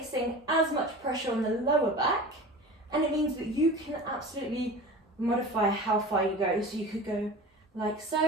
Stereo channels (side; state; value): both; normal; correlation 0.35